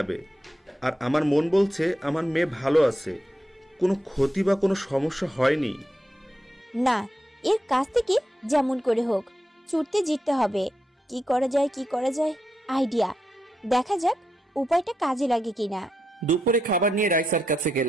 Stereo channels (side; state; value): both; normal; correlation 0.84